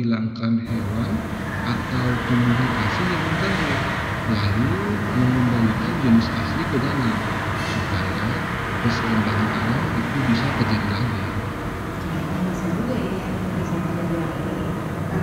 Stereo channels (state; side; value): identical; both; correlation 1.00